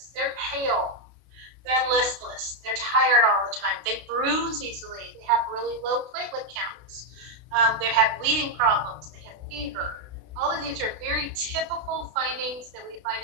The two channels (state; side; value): late; left; 32 ms